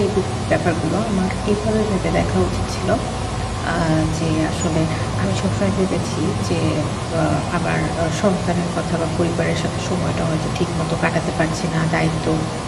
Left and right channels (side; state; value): both; identical; correlation 1.00